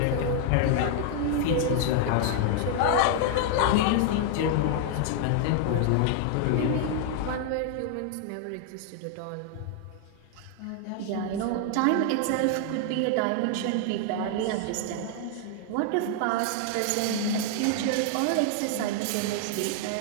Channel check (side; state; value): both; different; correlation 0.00